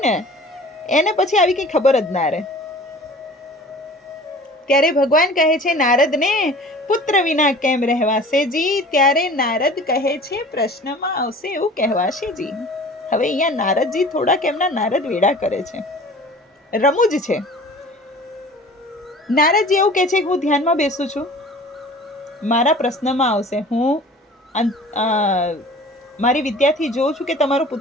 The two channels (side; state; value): both; normal; correlation 0.44